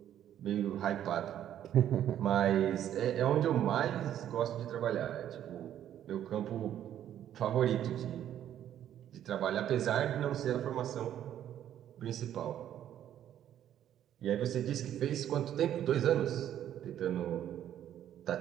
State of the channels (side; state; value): left; quieter; 10.9 dB